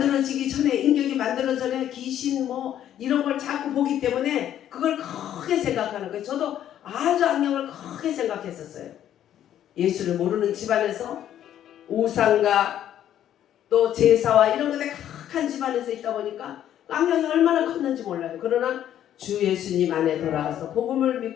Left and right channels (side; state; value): right; quieter; 11.0 dB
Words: 전에, 인격이 만들어지기 전에 귀신 뭐 이런 걸 자꾸 보기 때문에 그걸 크게 생각하는 거예요. 저도 아주 악령을 크게 생각했었어요. 예수를 모르는 집안에서 우상과 또 제사와 이런 것에 각한 집안에서 있다 보니까 악령이 얼마나 컸는지 몰라요. 그러나 주 예수님 안에 돌아가서 복음을